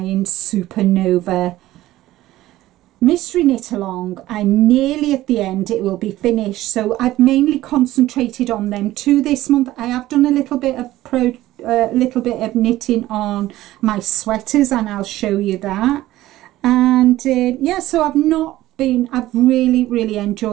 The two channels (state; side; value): quieter; left; 15.6 dB